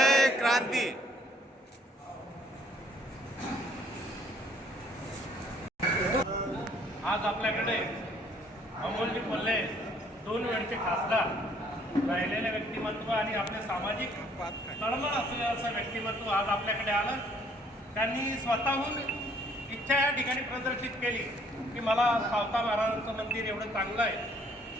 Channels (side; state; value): both; normal; correlation 0.62